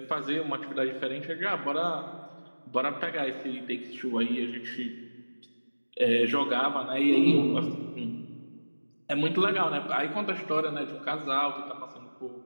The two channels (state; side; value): inverted; both; correlation -1.00